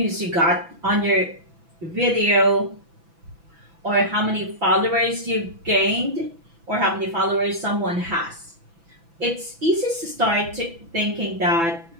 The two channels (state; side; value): late; left; 6.0 ms